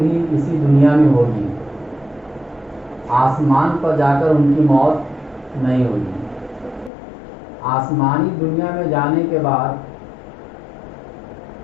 اسی دنیا میں ہوگی، آسمان پر جا کر ان کی موت نہیں ہوگی۔ آسمانی دنیا میں جانے کے بعد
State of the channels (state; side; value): drops out; right; at 6.9 s